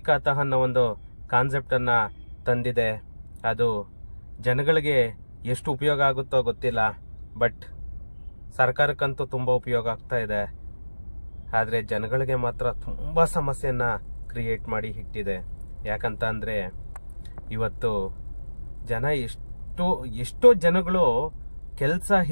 ಖಾತಾ ಅನ್ನೋ ಒಂದು ಕಾನ್ಸೆಪ್ಟನ್ನು ತಂದಿದೆ. ಅದು ಜನಗಳಿಗೆ ಎಷ್ಟು ಉಪಯೋಗ ಆಗುತ್ತೋ ಗೊತ್ತಿಲ್ಲ. ಬಟ್ ಸರ್ಕಾರಕ್ಕಂತೂ ತುಂಬ ಉಪಯೋಗ ಆಗ್ತಾ ಇದೆ. ಆದರೆ ಜನಗಳಿಗೆ ಮಾತ್ರ ತುಂಬ ಸಮಸ್ಯೆಯನ್ನ ಕ್ರಿಯೇಟ್ ಮಾಡಿ ಇಟ್ಟಿದೆ. ಯಾಕಂತ ಅಂದರೆ ಇವತ್ತು ಜನ ಎಷ್ಟೋ ಜನಗಳು ಕೆಲಸ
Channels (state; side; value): inverted; both; correlation -1.00